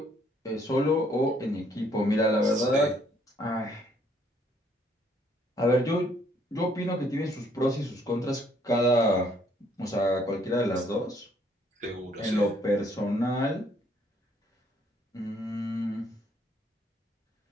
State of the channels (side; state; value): both; normal; correlation 0.66